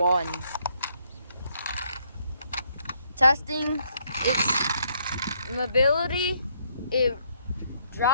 Testing its mobility. It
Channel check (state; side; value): inverted; both; correlation -0.71